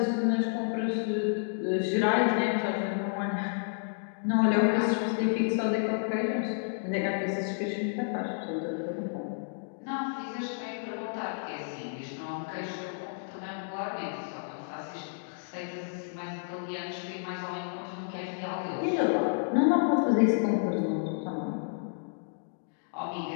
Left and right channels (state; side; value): silent; right; digital silence